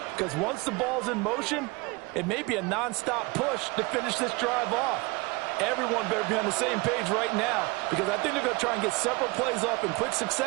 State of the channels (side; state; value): left; quieter; 25.3 dB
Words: Because once the ball's in motion, it may be a nonstop push to finish this drive off. Everyone better be on the same page right now, because I think they're going to try and get several plays off in quick